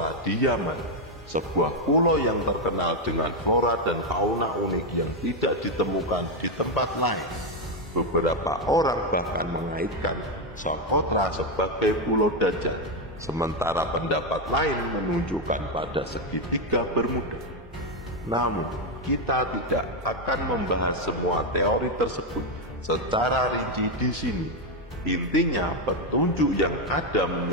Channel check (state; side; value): normal; both; correlation 0.06